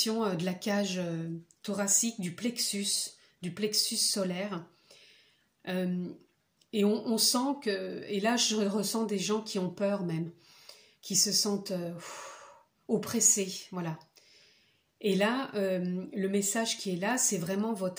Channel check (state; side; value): identical; both; correlation 1.00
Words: de la cage thoracique, du plexus solaire. Et on sent que, et là je ressens des gens qui ont peur même, qui se sentent oppressés, voilà. Et là, le message qui est là, c'est vraiment